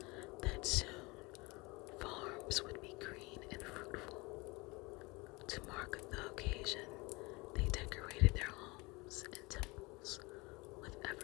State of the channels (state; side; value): quieter; right; 25.1 dB